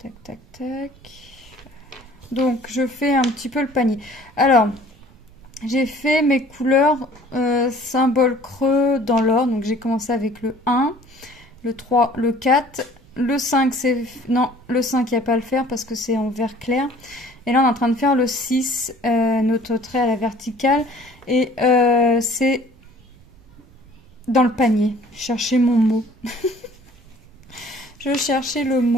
tac, tac. Donc je fais un petit peu le panier. Alors, j'ai fait mes couleurs symbole creux dans l'ordre. Donc j'ai commencé avec le 1, le 3, le 4. Le 5, c'est... Non, le 5, il n'y a pas à le faire parce que c'est en vert clair. Et là, on est en train de faire le 6, notre trait à la verticale. Et c'est dans le panier. Je cherchais mon mot. Je cherchais le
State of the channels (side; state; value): right; noise; rumble, 26 dB below the sound